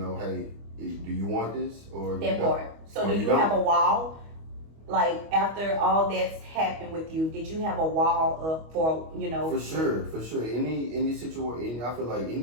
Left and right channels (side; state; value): left; late; 25 ms